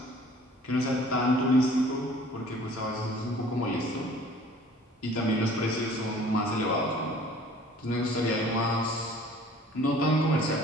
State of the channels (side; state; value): both; normal; correlation 0.51